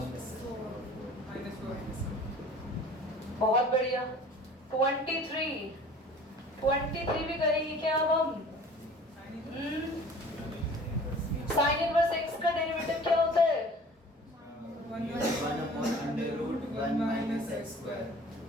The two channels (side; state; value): both; normal; correlation 0.46